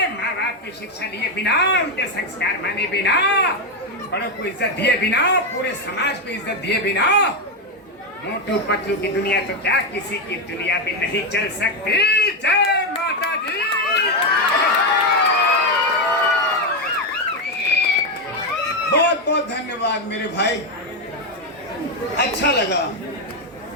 माँ बाप की शिक्षा लिए बिना, उनके संस्कार माने बिना, बड़ों को इज्जत दिए बिना, पूरे समाज को इज्जत दिए बिना, मोटू पतलू की दुनिया तो क्या किसी की दुनिया भी नहीं चल सकती। जय माता दी। बहुत बहुत धन्यवाद मेरे भाई, अच्छा लगा,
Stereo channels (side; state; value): both; normal; correlation 0.07